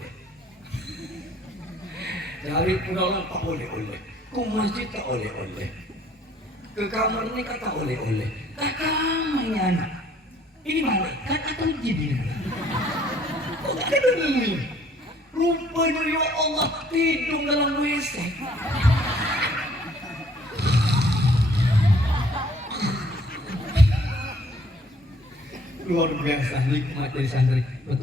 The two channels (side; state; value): both; normal; correlation 0.60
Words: Cari pulang tak boleh. Ke masjid tak boleh. Ke kamar ini tak boleh. Tak kamarnya anak. Ini malaikat atau jin? Kok gak ada dunia? Rupanya ya Allah hidung dalam WC. Luar biasa nikmat dari santri.